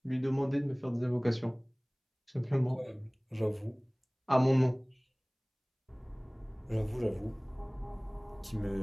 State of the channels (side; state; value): both; identical; correlation 1.00